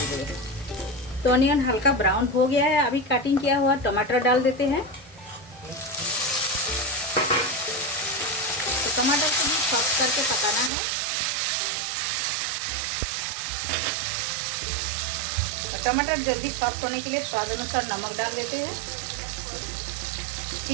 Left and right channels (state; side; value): drops out; left; at 10.7 s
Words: रहे हैं। तो ऑनियन हल्का ब्राउन हो गया है। अभी काटिंग किया हुआ टमाटर डाल देते हैं। तो टमाटर को भी सॉफ्ट करके पकाना है। तो टमाटर जल्दी सॉफ्ट होने के लिए स्वाद अनुसार नमक डाल देते हैं।